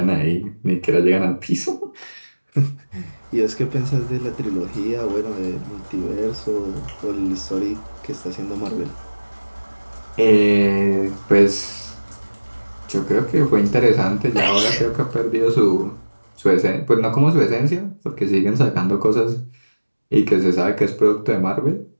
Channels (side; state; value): both; inverted; correlation -1.00